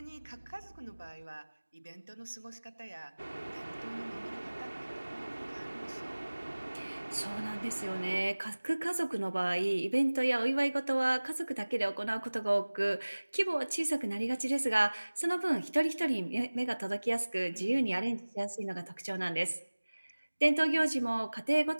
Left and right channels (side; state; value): both; inverted; correlation -1.00